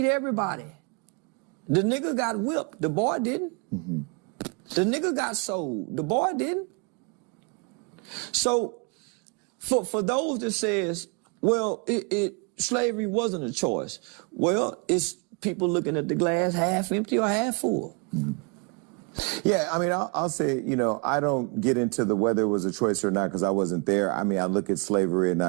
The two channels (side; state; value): left; quieter; 33.2 dB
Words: everybody. The nigga got whipped. The boy didn't. Mm-hmm. The nigga got sold. The boy didn't. So for those that says, well, slavery wasn't a choice. Well, it's people looking at the glass half empty or half full. Mm-hmm. Yeah, I mean, I'll say, I don't get into the whether it was a choice or not because I wasn't there. I mean, I look at slavery and